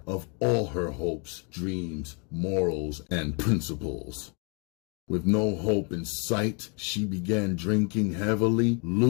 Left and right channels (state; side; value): quieter; right; 34.9 dB